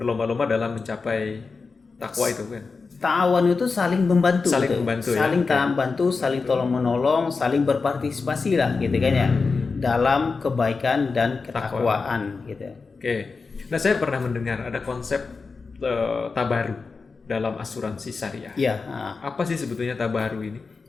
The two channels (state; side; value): quieter; right; 4.5 dB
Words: dalam mencapai takwa itu kan. Ta'awun itu saling membantu, saling gitu. membantu, saling ya? bantu, saling tolong menolong, saling berpartisipasi lah, gitu kan ya, dalam kebaikan dan ketakwaan, gitu. Oke. Nah, saya pernah mendengar ada konsep tabaru dalam asuransi syariah. Iya. Apa sih sebetulnya tabaru ini?